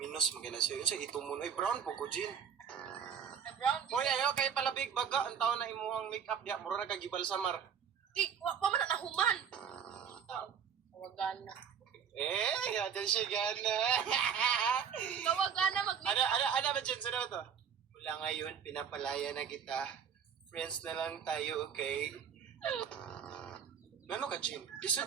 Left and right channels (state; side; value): quieter; left; 7.6 dB